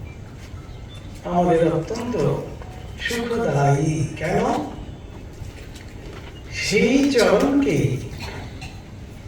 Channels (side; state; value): both; identical; correlation 1.00